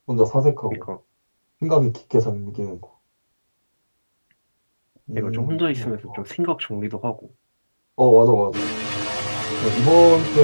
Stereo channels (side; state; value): both; inverted; correlation -1.00